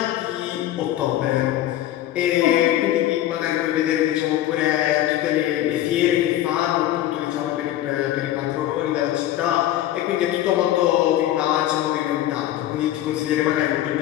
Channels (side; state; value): right; quieter; 13.3 dB